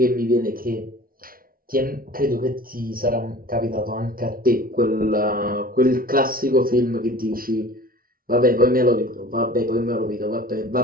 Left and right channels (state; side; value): late; left; 0.42 ms